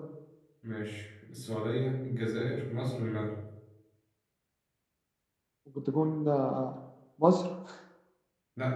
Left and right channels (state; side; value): identical; both; correlation 1.00